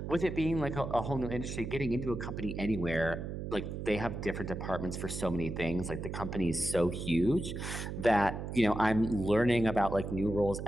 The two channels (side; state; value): right; noise; hum, 6 dB below the sound